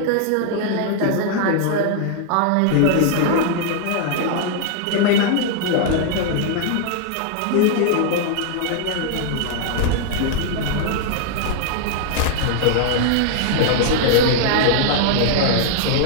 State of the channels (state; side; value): different; both; correlation 0.00